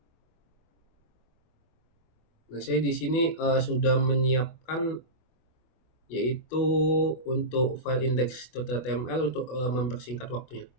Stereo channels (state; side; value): late; right; 24 ms